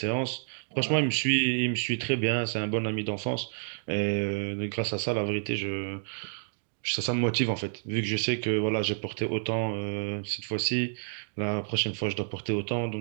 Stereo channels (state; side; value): silent; left; digital silence